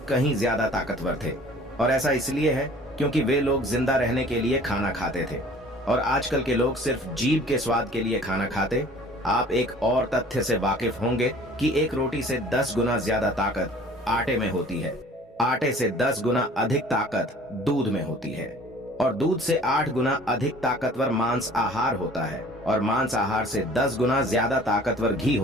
कहीं ज्यादा ताकतवर थे। और ऐसा इसलिए है क्योंकि वे लोग जिंदा रहने के लिए खाना खाते थे और आजकल के लोग सिर्फ जीभ के स्वाद के लिए खाना खाते। आप एक और तथ्य से वाकिफ होंगे कि एक रोटी से 10 गुना ज्यादा ताकत आटे में होती है। आटे से 10 गुना अधिक ताकत दूध में होती है और दूध से 8 गुना अधिक ताकतवर मांस आहार होता है और मांस आहार से 10 गुना ज्यादा ताकतवर घी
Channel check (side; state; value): both; normal; correlation 0.49